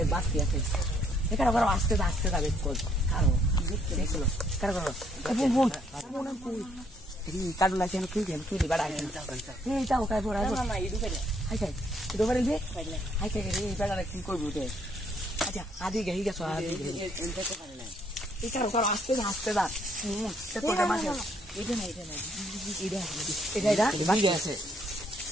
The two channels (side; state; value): both; normal; correlation 0.68